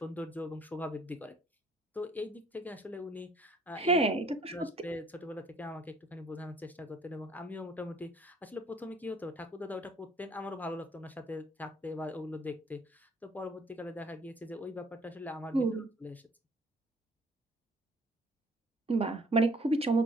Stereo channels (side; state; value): both; normal; correlation 0.58